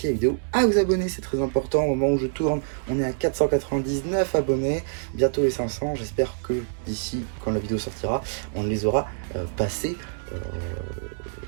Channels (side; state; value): left; silent; digital silence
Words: la vidéo, à vous abonner, c'est très important. Au moment où je tourne, on est à 499 abonnés, bientôt les 500. J'espère que d'ici, quand la vidéo sortira, on les aura passés